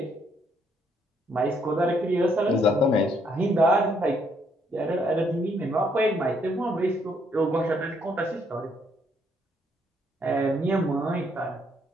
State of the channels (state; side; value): normal; both; correlation 0.70